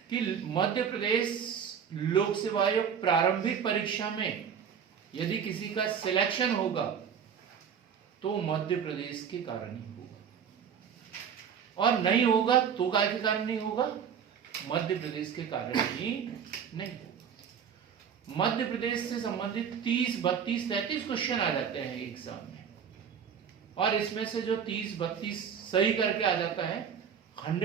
कि मध्य प्रदेश लोक सेवा आयोग प्रारंभिक परीक्षा में यदि किसी का सिलेक्शन होगा तो मध्य प्रदेश के कारण ही होगा, और नहीं होगा तो काय के कारण नहीं होगा, मध्य प्रदेश के कारण ही नहीं होगा। मध्य प्रदेश से संबंधित 30, 32, 33 क्वेश्चन आ जाते हैं एग्जाम में, और इसमें से जो 30, 32 सही करके आ जाता है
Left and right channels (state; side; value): quieter; left; 7.5 dB